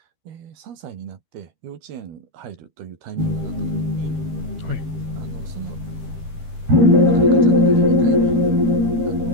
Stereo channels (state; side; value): late; left; 13 ms